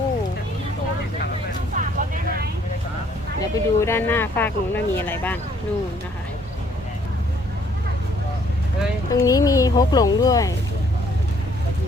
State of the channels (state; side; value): normal; both; correlation 0.63